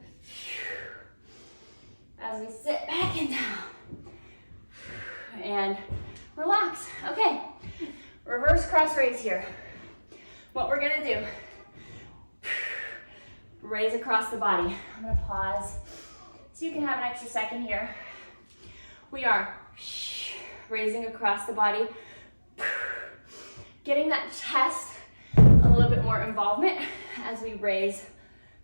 As we sit back and down. And relax. Okay. Reverse cross raise here. What we're gonna do, raise across the body. I'm gonna pause so you can have an extra second here. We are raising across the body, getting that chest a little bit more involvement as we raise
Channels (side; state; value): both; inverted; correlation -1.00